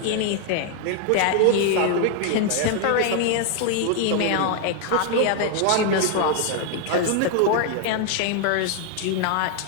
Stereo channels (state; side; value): different; both; correlation 0.00